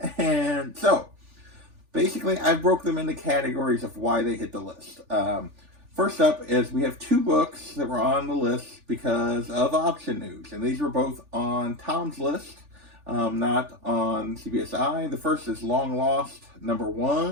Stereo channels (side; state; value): left; late; 3.4 ms